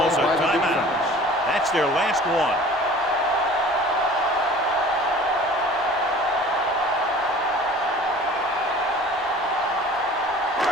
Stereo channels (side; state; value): both; normal; correlation 0.45